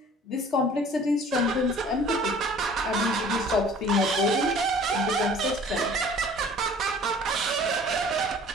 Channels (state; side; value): normal; both; correlation 0.49